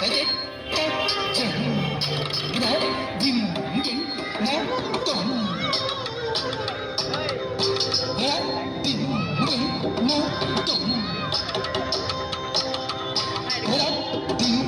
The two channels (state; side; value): identical; both; correlation 1.00